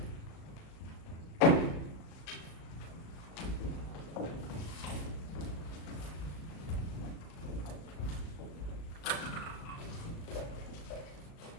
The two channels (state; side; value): late; right; 36 ms